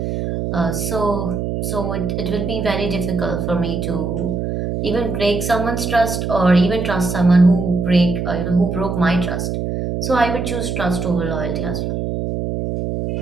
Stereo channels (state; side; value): noise; right; hum, 2 dB below the sound